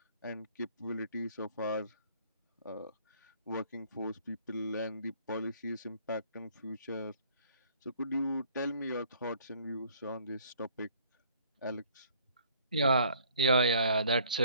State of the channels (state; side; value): inverted; both; correlation -0.58